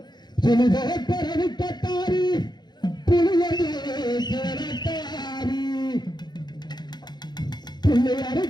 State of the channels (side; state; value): right; late; 0.21 ms